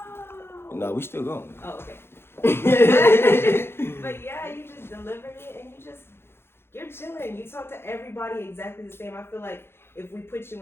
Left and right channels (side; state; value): right; late; 0.11 ms